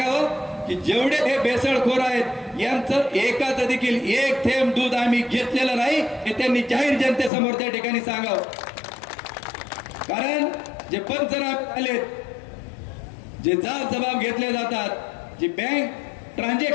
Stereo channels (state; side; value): drops out; right; at 7.3 s